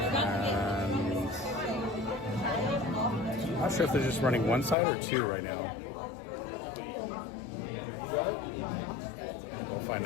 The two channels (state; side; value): drops out; right; at 4.8 s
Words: And not sure if they're just running one side or two right now. We'll find